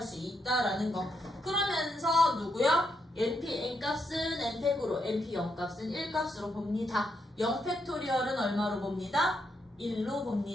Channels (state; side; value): normal; both; correlation 0.80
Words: 수 있다라는 거. 그러면서 누구요? np n값은 n팩으로, np 0값은 1값으로 봅니다. 0팩토리얼은 얼마로 봅니다? 1로